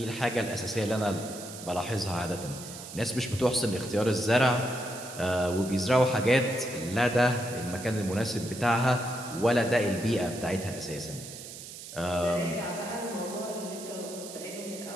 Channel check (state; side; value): noise; right; hiss, 12 dB below the sound